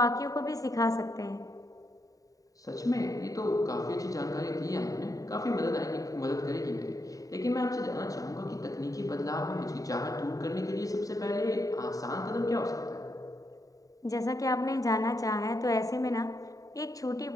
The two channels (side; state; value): right; late; 0.17 ms